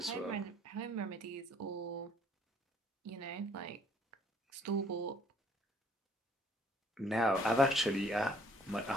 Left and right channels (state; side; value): normal; both; correlation 0.61